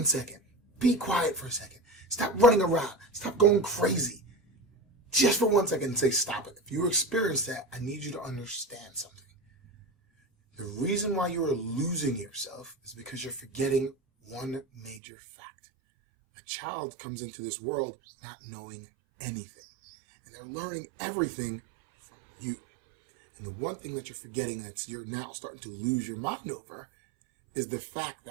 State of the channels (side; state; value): left; drops out; at 15.0 s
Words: second. Be quiet for a second. Stop running around. Stop going crazy. Just for 1 second and say stop it. If you experience that, I need you to understand something. The reason why you are losing yourself is because you're forgetting one major fact. A child comes into this world not knowing anything. And they're learning everything from you. And the one thing that you're forgetting that you're now starting to lose your mind over is the fact